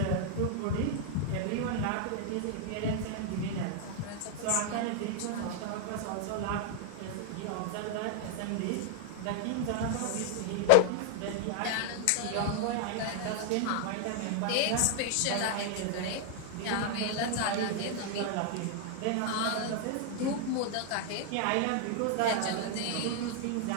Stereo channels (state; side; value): different; both; correlation 0.00